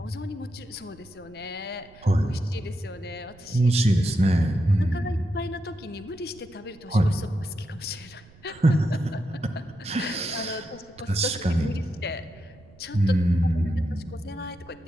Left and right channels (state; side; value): noise; right; rumble, 24 dB below the sound